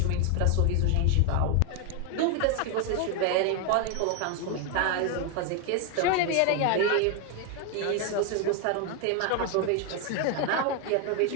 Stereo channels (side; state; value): both; different; correlation 0.01